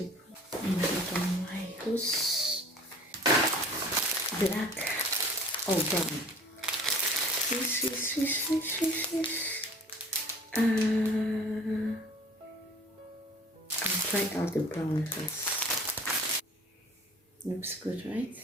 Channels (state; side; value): normal; both; correlation 0.47